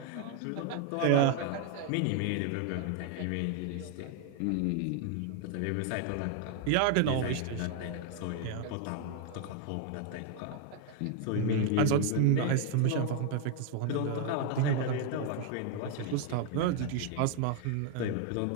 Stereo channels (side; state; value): both; different; correlation 0.00